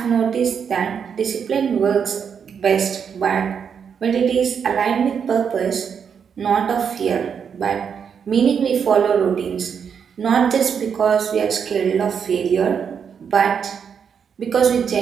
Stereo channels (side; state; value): left; quieter; 7.1 dB